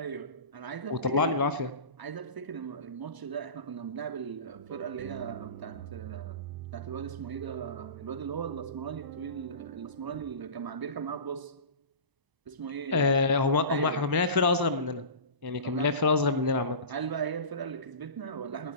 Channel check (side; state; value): left; late; 1.0 ms